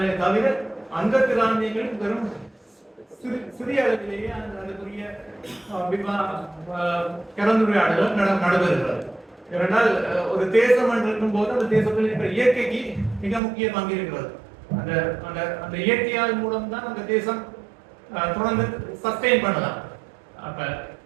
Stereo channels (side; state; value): left; drops out; at 13.4 s